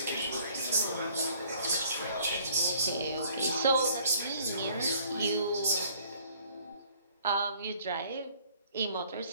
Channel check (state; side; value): inverted; both; correlation -0.58